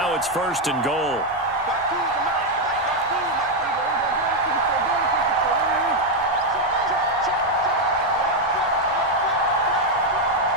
it's 1st and goal.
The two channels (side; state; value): both; normal; correlation 0.03